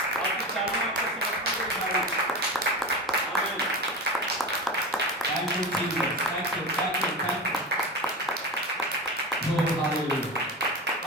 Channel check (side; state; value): both; normal; correlation 0.25